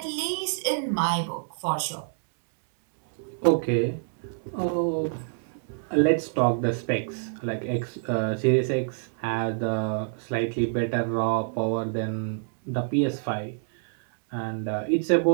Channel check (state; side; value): silent; left; digital silence